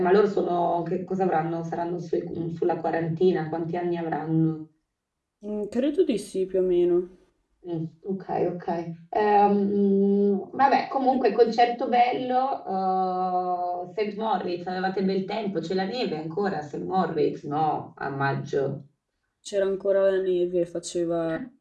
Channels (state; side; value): identical; both; correlation 1.00